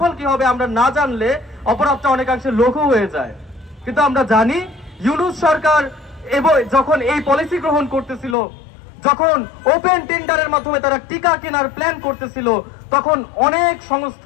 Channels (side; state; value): right; drops out; at 8.3 s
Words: কি হবে আমরা না জানলে অপরাধটা অনেকাংশে লঘু হয়ে যায়। কিন্তু আমরা জানি ইউনূস সরকার যখন এই পলিসি গ্রহণ করতেছিল, যখন ওপেন টেন্ডারের মাধ্যমে তারা টিকা কেনার প্ল্যান করতেছিল, তখন অনেক